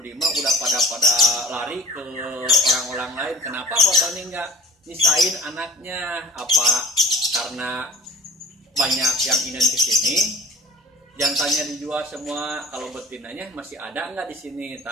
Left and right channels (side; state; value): both; normal; correlation 0.42